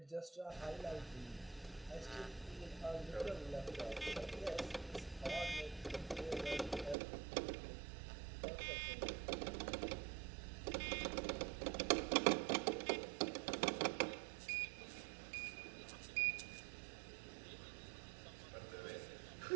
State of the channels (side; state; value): left; drops out; at 7.0 s